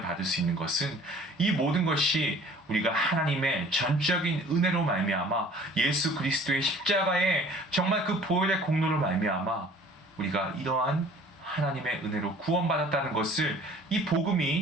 받을 수 있는 것은 이 모든 것이 우리가 하나님의 전적인 은혜로 말미암아 예수 그리스도의 십자가에 정말 그 보혈의 공로로 말미암아 우리가 이러한 하나님의 은혜로 구원받았다는 것을 이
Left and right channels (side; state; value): both; normal; correlation 0.50